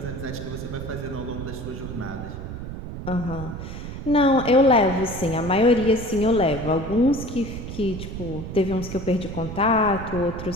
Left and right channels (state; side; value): noise; right; rumble, 8 dB below the sound